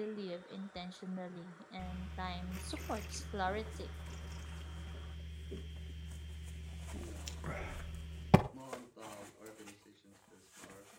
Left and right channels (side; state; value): both; identical; correlation 1.00